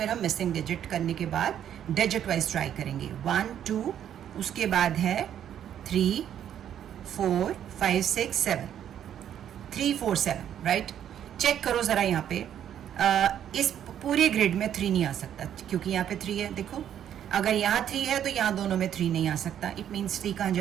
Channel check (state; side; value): quieter; left; 10.0 dB